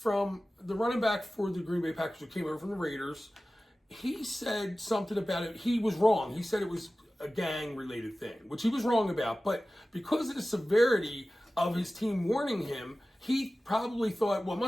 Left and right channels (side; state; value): both; normal; correlation 0.96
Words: the running back for the Green Bay Packers who came over from the Raiders. He said something about it. He was wrong. He said it was a gang-related thing, which he was wrong about. But because of the severity of his team warning him, he probably thought, well, it